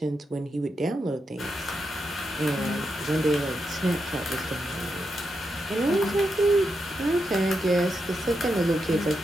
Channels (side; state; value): both; normal; correlation 0.85